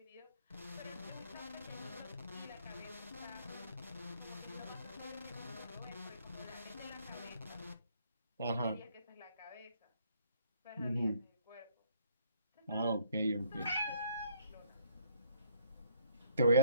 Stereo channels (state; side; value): inverted; both; correlation -0.65